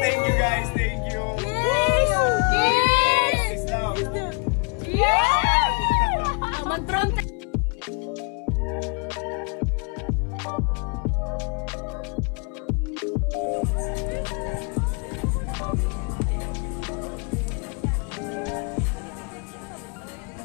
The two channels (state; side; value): quieter; right; 34.0 dB